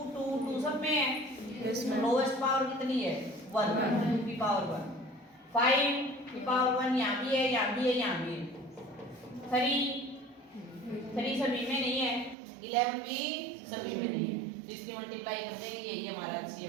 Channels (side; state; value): left; drops out; at 12.4 s